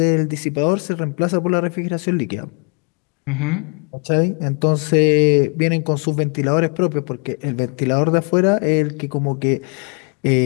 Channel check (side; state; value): right; quieter; 36.5 dB